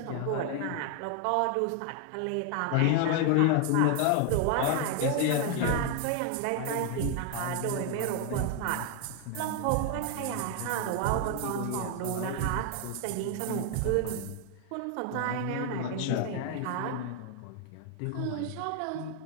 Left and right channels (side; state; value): both; different; correlation 0.01